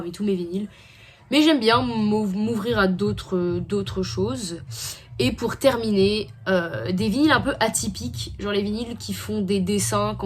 tous mes vinyles. Mais j'aime bien m'ouvrir à d'autres choses. Et pour terminer, des vinyles un peu atypiques, genre les vinyles qui font des dessins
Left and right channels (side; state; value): both; identical; correlation 1.00